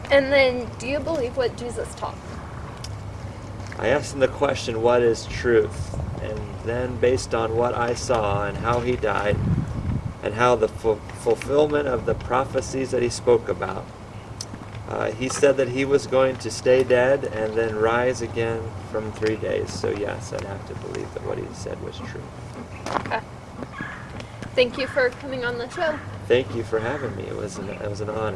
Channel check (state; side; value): identical; both; correlation 1.00